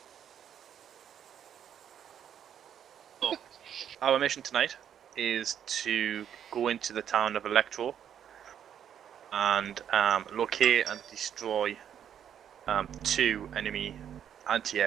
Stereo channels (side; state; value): left; quieter; 9.2 dB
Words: So, our mission tonight is to go into the town of Electro and locate and destroy 2 enemy